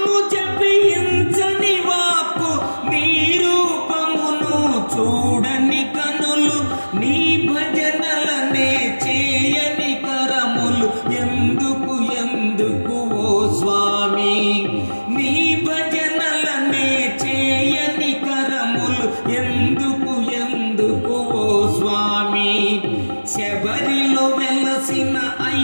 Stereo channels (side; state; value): both; inverted; correlation -1.00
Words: జపించని వాక్కు, నీ రూపమును చూడని కనులు. నీ భజనలనే చేయని కరములు, ఎందుకు ఎందుకు ఓ స్వామి? నీ భజనలనే చేయని కరములు, ఎందుకు ఎందుకు ఓ స్వామి? శబరిలో వెలసిన